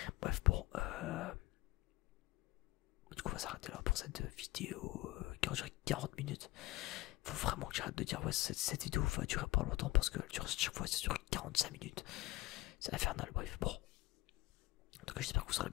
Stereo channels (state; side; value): quieter; right; 18.4 dB